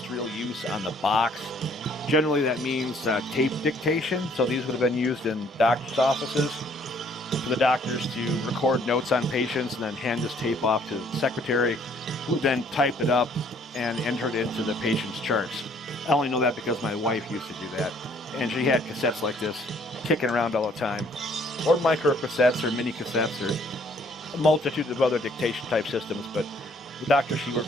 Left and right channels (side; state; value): both; normal; correlation 0.62